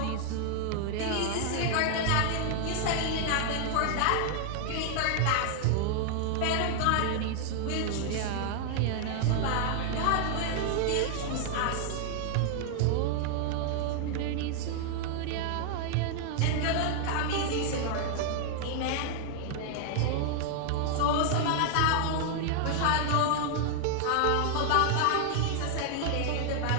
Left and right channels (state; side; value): different; both; correlation 0.00